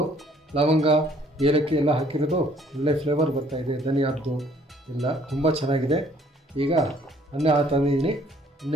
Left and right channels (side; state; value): both; normal; correlation 0.60